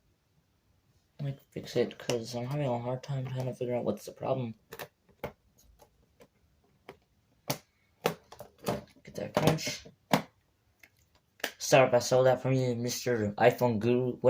fix it because I'm having a hard time trying to figure out what's the problem. Get that crunch. Sorry if I stole that from you, Mr. iPhone Guru,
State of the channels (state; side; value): identical; both; correlation 1.00